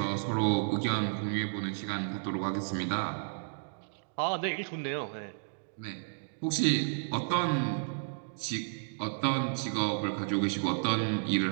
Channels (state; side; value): silent; left; digital silence